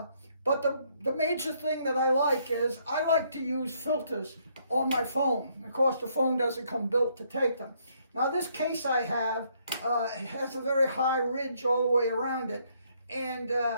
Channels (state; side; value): inverted; both; correlation -0.70